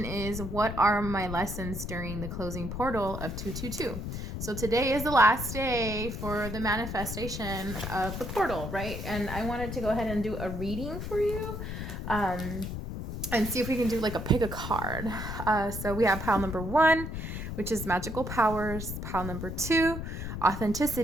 is, what are my lessons during the closing portal of 222? So today is the last day for the manifestation of the portal, right? And I wanted to go ahead and do a reading for you and see if we can do like a pick a card. So we have pile number 1, which is magical powers, pile number 2,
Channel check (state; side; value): noise; left; rumble, 6 dB below the sound